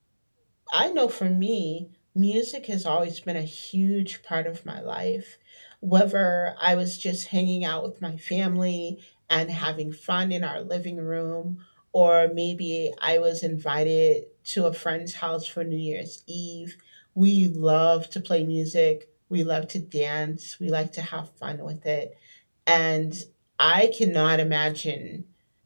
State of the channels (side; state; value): both; inverted; correlation -1.00